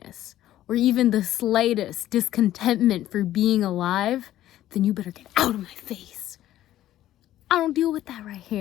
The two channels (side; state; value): right; quieter; 13.4 dB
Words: or even the slightest discontentment for being alive, then you better get out of my face. I don't deal with that right